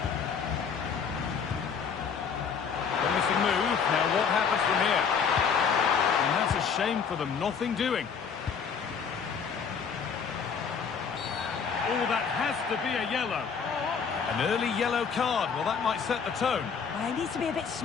Move. Now what happens from here? And that's a shame for them. Nothing doing. Oh, that has to be a yellow. An early yellow card. Well, that might set the tone. Well, he needs to be a bit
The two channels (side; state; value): right; quieter; 6.4 dB